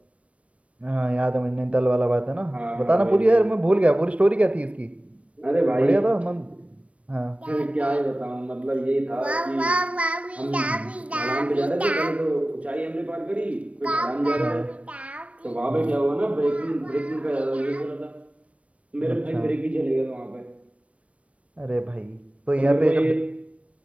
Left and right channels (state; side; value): late; left; 0.064 ms